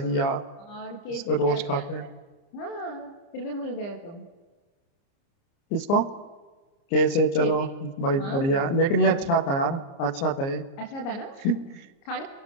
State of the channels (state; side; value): late; right; 29 ms